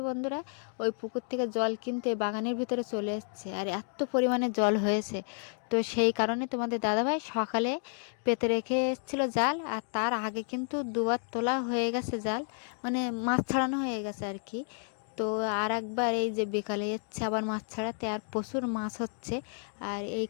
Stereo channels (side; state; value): right; silent; 57 dB below the other